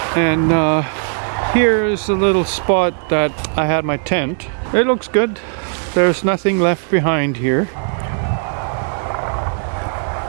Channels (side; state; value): left; silent; digital silence